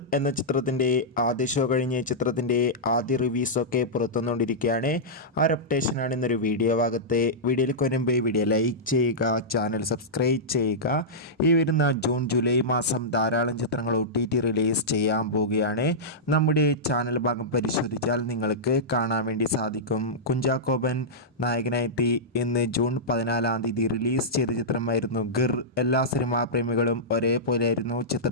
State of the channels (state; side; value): normal; both; correlation -0.12